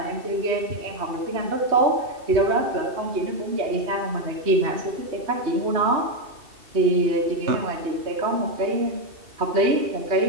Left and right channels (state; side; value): late; left; 2.7 ms